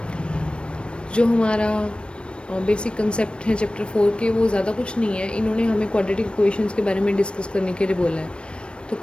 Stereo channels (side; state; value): right; late; 0.057 ms